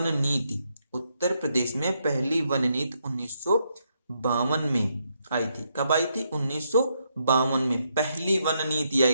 नीति 1952 में आई थी। कब आई थी, 1952 में पहली वन नीति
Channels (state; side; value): inverted; both; correlation -0.78